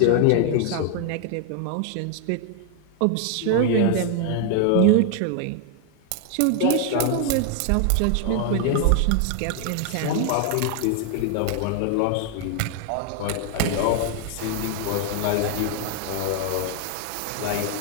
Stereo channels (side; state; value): both; different; correlation 0.00